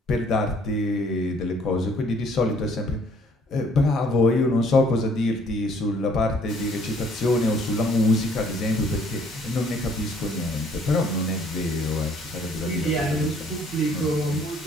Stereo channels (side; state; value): both; normal; correlation 0.61